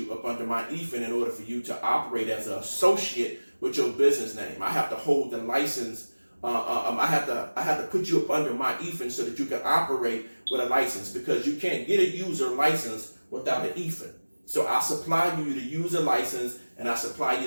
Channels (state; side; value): inverted; both; correlation -1.00